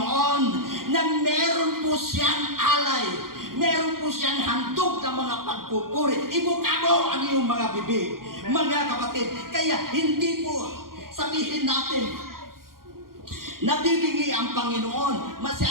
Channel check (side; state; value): left; late; 0.92 ms